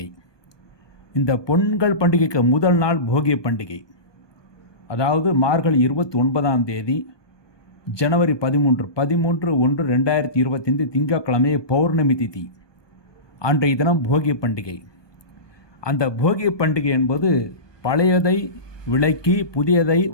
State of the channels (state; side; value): late; right; 1.2 ms